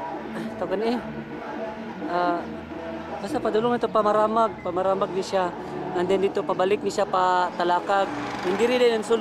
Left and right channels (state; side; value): identical; both; correlation 1.00